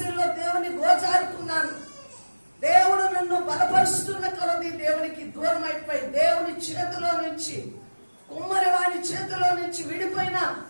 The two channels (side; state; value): both; inverted; correlation -1.00